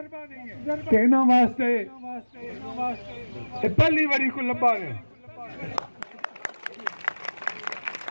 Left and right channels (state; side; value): inverted; both; correlation -1.00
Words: कहना वास्ते पहली बारी को लब्बा ने।